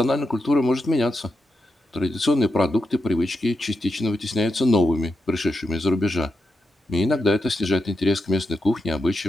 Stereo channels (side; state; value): both; normal; correlation 0.86